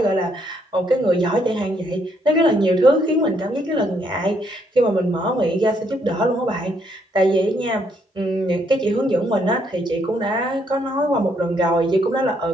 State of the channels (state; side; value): normal; both; correlation 0.72